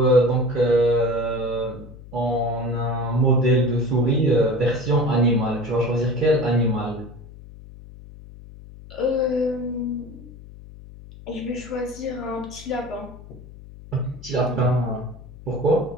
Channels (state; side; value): noise; left; hum, 18 dB below the sound